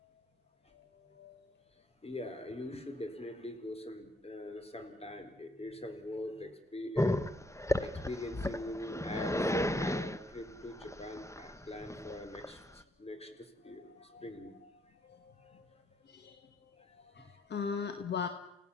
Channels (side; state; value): both; normal; correlation 0.71